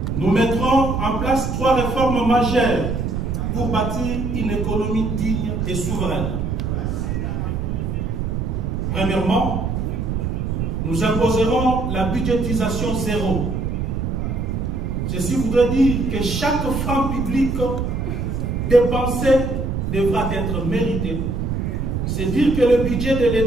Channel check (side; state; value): right; noise; rumble, 1 dB below the sound